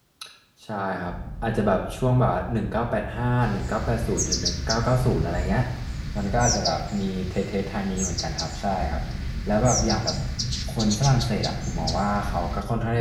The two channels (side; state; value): both; identical; correlation 1.00